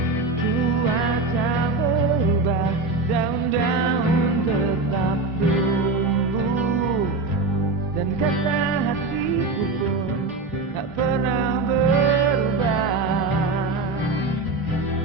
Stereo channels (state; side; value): quieter; left; 3.4 dB